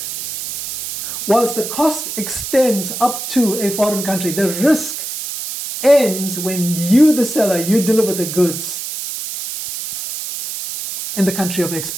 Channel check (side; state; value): right; noise; hiss, 6 dB below the sound